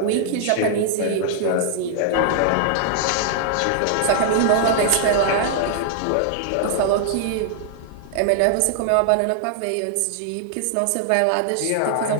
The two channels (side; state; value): both; different; correlation -0.01